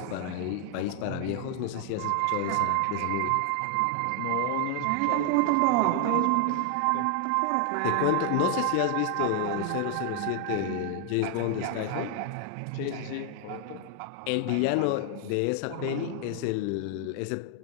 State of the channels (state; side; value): different; both; correlation 0.00